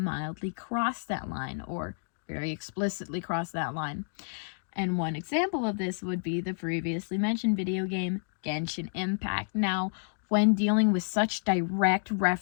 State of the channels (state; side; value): silent; right; digital silence